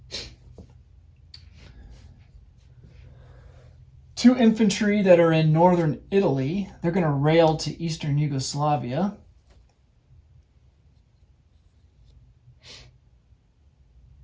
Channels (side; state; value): both; identical; correlation 1.00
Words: Two infantry that are in northern Italy, they're going to rail to Eastern Yugoslavia.